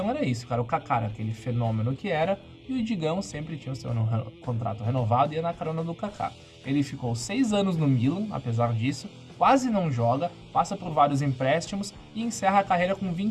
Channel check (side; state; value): both; identical; correlation 1.00